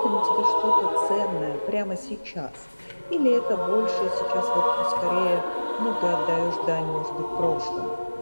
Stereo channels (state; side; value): inverted; both; correlation -1.00